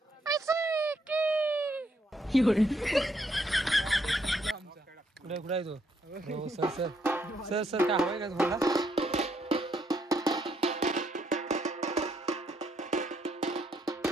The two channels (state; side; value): normal; both; correlation 0.73